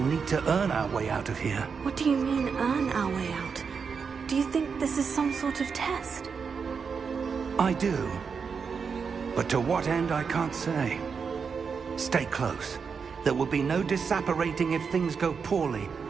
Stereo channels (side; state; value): left; quieter; 5.8 dB